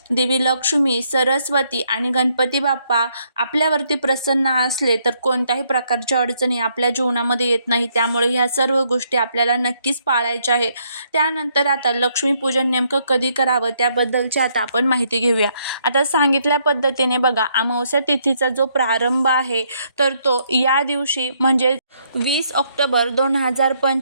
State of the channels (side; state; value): both; inverted; correlation -0.72